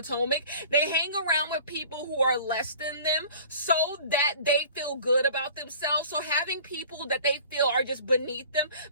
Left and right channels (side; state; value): both; inverted; correlation -0.45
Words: They hang around with people who are less than them so that they feel good about themselves. So having people that they feel are just beneath them